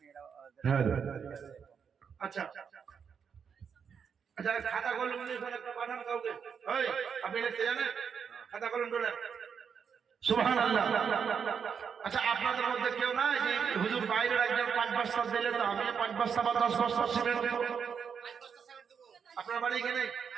হ্যাঁ, আচ্ছা আচ্ছা, খাতা কলম নিয়ে একটা পাঠান কাউকে। ওই, আপনি লিখতে জানেন? খাতা কলম তোলেন। সুবহানাল্লাহ। আচ্ছা, আপনাদের মধ্যে কেউ নাই যে হুজুর বাইরের একজন 5 বস্তা দিলে তো আমি 5 বস্তা বা 10 বস্তা সিমেন্ট দেব? আপনার বাড়ি এখানে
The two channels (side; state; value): left; quieter; 6.8 dB